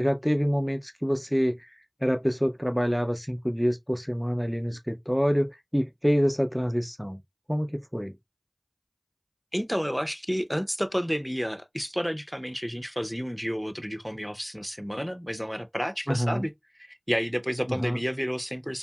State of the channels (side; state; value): both; identical; correlation 1.00